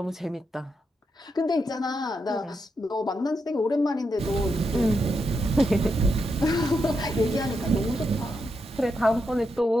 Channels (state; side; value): normal; both; correlation 0.84